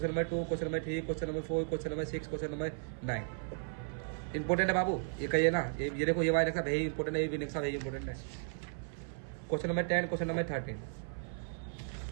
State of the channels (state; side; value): silent; left; 54 dB below the other